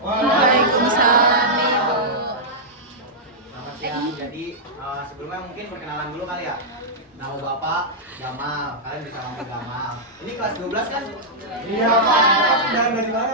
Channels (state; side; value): normal; both; correlation -0.09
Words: Waalaikumsalam, Ibu. Selamat siang. Jadi sebelumnya mungkin perkenalan dulu kali ya. Nama Bapak Gamal, kalian bisa panggil Gamal. Ini kelas 12 kan? Iya Pak. Dan dari mana